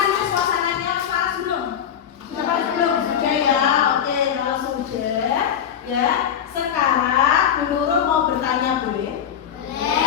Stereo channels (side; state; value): right; quieter; 8.8 dB